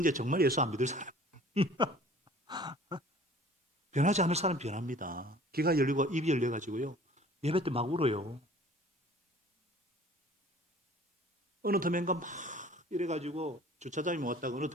정말 예수 안 믿을 사람. 변하지 않을 사람 변합니다. 귀가 열리고 입이 열려가지고요. 예배 때 막 울어요. 어느 텀엔가 막 이래가지고 주차장에 왔다가 어느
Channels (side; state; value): both; normal; correlation 0.49